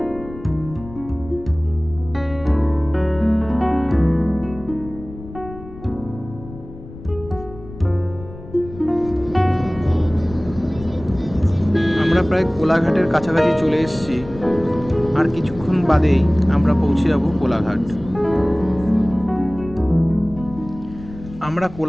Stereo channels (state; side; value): noise; left; rumble, 15 dB below the sound